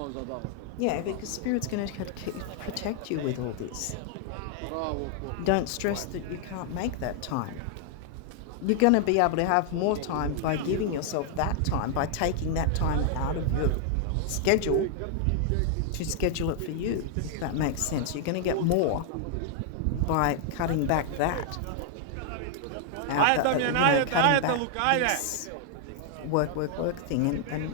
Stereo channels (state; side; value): different; both; correlation 0.00